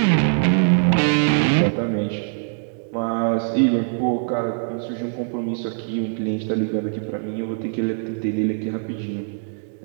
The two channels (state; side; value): silent; left; digital silence